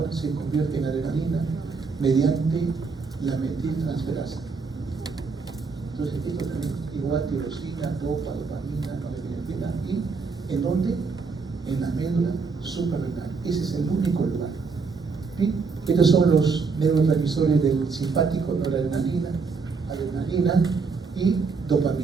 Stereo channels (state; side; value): quieter; left; 4.7 dB